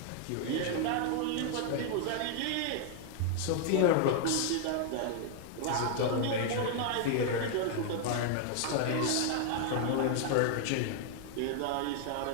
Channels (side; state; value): both; different; correlation 0.00